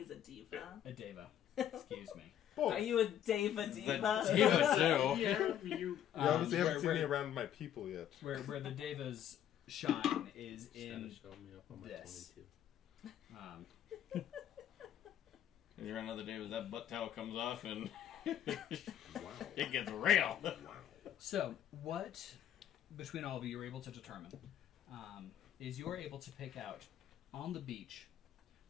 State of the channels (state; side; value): quieter; right; 10.5 dB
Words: a diva. A Deva. Excuse me. Boy, Are you a Deva diva? The diva too. Yeah, you. you obviously haven't seen me where, around my people yet. where the Devas shine is Just gotta in show me up on my this. 22. If you're another day with that butt towel comes off and Wow. it gets real. Wow. So, what, between all of you, you're able to determine is you're able to pick out, on the beach,